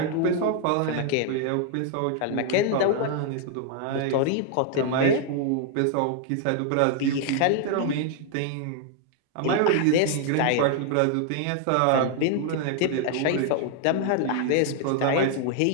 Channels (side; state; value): both; different; correlation 0.00